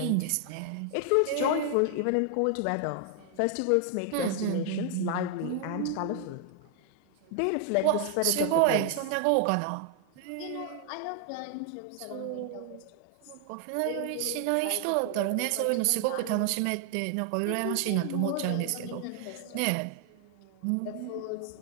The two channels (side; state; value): both; different; correlation 0.00